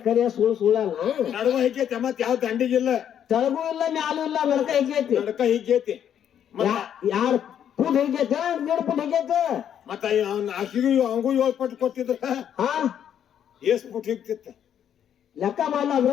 ಸುಳ್ಳ ನಡುವ ಹಿಕ್ಕೈತೆ ಮತ್ ಯಾವ ದಂಡಿಗಿಲ್ಲ ತಳಗೂ ಇಲ್ಲ ಮ್ಯಾಲೂ ಇಲ್ಲ ನಡಕ ಹೆಗ್ಗೈತಿ ನಡಕ ಹಿಕ್ಕೈತಿ ಯಾರು ಫುಟ್ ಹೆಗ್ಗೈತಿ 2 ಫುಟ್ ಹೆಗ್ಗೈತಿ ಮತ್ತ ಅವ್ನ ಆಕಿಗೂ ಅವಂಗೂ 7 ಪಟ್ಟು ಕೊಟ್ಟಿದ್ರ ಹಾ ಎಷ್ಟ್ ಪುಟ್ ಹಿಕ್ತಿತ್ತ ಲೆಕ್ಕ ಮಾಡಲ್ಲ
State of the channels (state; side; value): quieter; right; 9.4 dB